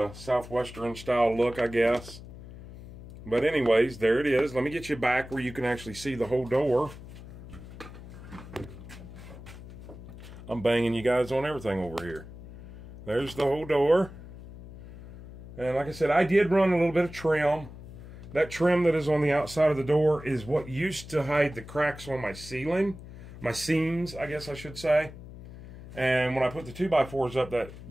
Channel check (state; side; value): noise; left; hum, 15 dB below the sound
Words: a Southwestern style look, I guess. But anyways, there it is. Let me get you back where you can actually see the whole door. I'm banging you guys on everything over here. There's the whole door. And like I said, I did run a little bit of trim. That trim that is on the outside of the door is what used to hide the cracks on my ceiling. My seams, I guess I should say. And when I put the 2x4s up that